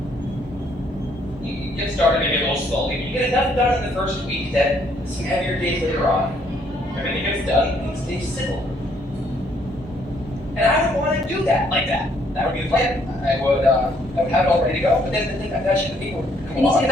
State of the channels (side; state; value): both; normal; correlation 0.67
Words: you get started maybe a little slowly, but you get enough done in the first week that some heavier days later on, everything gets done, things stay simple. And I would want to do that like that. That would be the plan. I would have it all ready to go, but then the thing I'm touching the people would come Ini along.